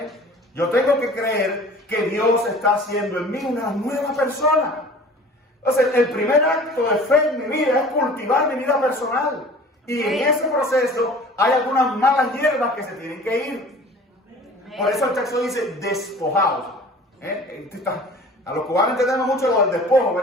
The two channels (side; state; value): both; normal; correlation 0.45